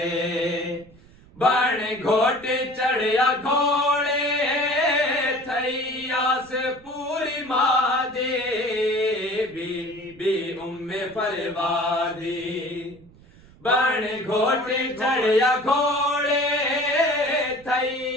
बण घोट चढ़िया घोड़े थई आस पूरी मादे बीबी उम्मे फरवादी बण घोट चढ़िया घोड़े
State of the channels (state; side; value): noise; right; rumble, 25 dB below the sound